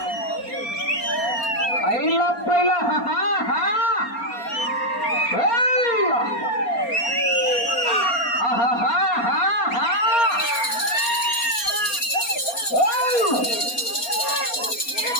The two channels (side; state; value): right; late; 4.3 ms